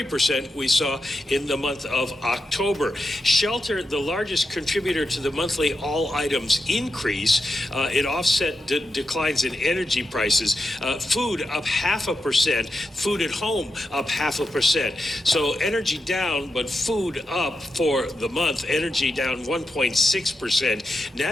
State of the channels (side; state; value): both; normal; correlation 0.88